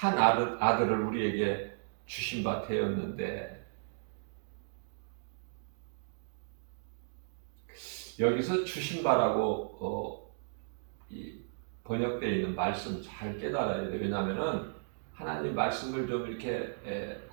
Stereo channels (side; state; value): left; silent; digital silence